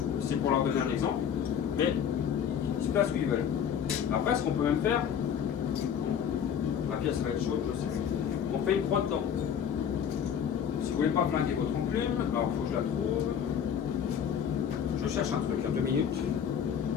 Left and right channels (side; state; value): right; quieter; 8.3 dB